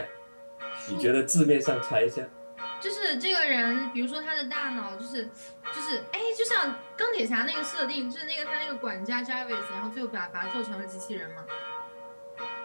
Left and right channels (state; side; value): inverted; both; correlation -1.00